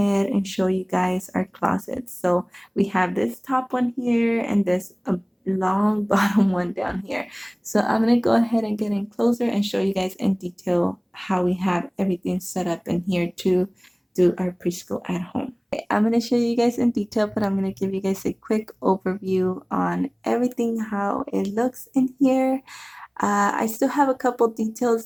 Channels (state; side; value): identical; both; correlation 1.00